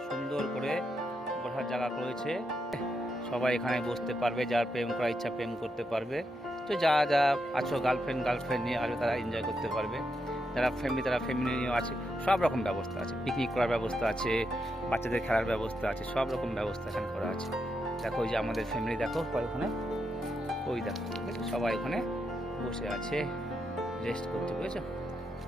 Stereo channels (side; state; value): both; normal; correlation 0.82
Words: সুন্দর করে বসার জায়গা রয়েছে। সবাই এখানে বসতে পারবে, যার প্রেম করার ইচ্ছা প্রেম করতে পারবে। তো যারা যা আছো গার্লফ্রেন্ড নিয়ে আসবে তারা এনজয় করতে পারবে, যারা ফ্যামিলি নিয়েও আছে। সব রকম ব্যবস্থা আছে, পিকনিক করার ব্যবস্থা আছে, বাচ্চাদের খেলার ব্যবস্থা আছে, সব রকম ব্যবস্থা এখানে করা আছে। দেখো ওই যে আমাদের ফ্যামিলি দেখো ওখানে, ওই দেখো সবাই ওখানে বসে আছে রেস্ট করতে, বুঝেছো?